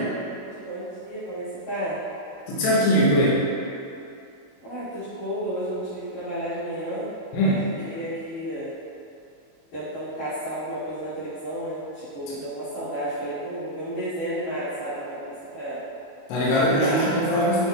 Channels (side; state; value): right; late; 22 ms